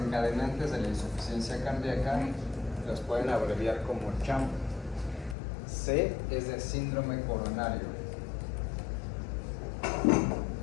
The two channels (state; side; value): drops out; right; at 5.4 s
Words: de la insuficiencia cardíaca los pueden abreviar como CHAM. C es de síndrome coronario.